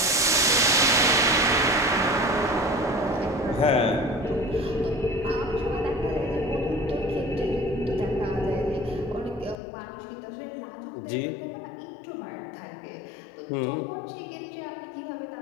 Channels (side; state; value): right; drops out; at 9.6 s